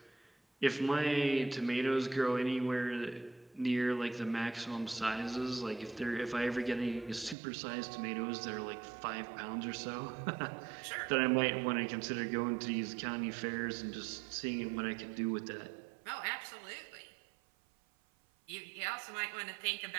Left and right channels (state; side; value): drops out; left; at 7.4 s